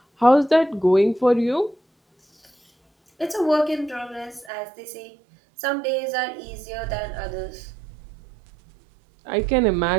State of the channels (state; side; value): drops out; left; at 4.5 s